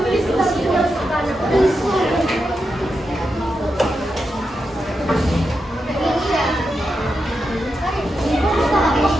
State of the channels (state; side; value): normal; both; correlation 0.87